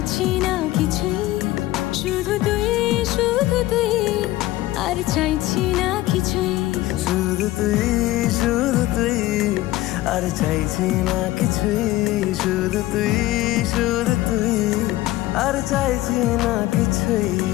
না কিছুই। শুধু তুই আর চাইছি না কিছুই। শুধু তুই আর চাইছি না কিছুই। শুধু তুই আর চাইছি না কিছুই।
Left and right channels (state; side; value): quieter; right; 16.7 dB